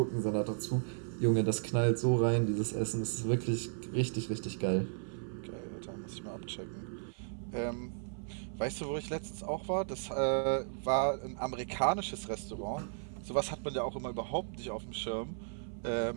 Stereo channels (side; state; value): left; silent; 54 dB below the other